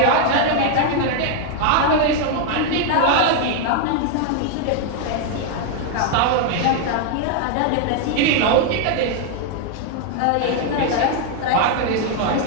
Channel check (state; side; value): different; both; correlation 0.01